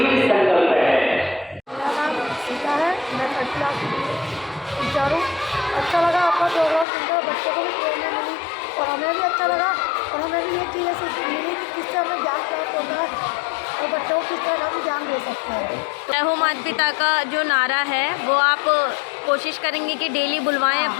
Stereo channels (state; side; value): drops out; right; at 6.9 s